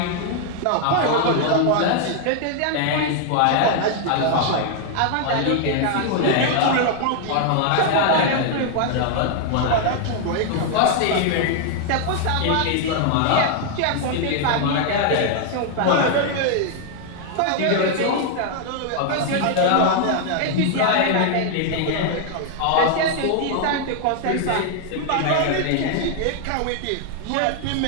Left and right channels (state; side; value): different; both; correlation 0.00